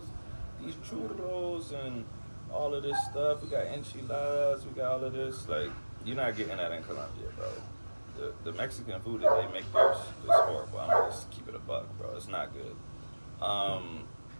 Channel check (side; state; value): both; inverted; correlation -1.00